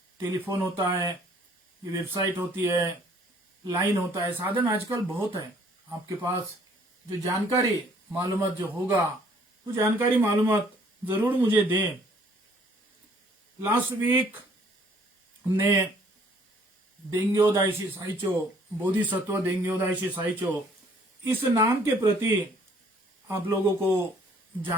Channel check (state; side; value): normal; both; correlation 0.60